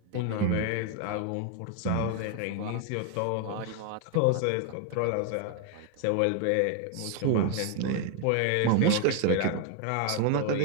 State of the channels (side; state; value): both; different; correlation 0.00